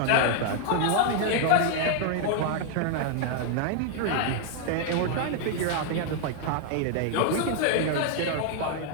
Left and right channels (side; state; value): both; different; correlation 0.00